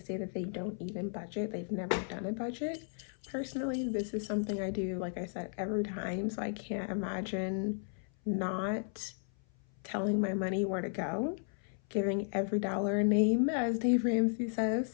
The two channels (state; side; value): silent; right; 55 dB below the other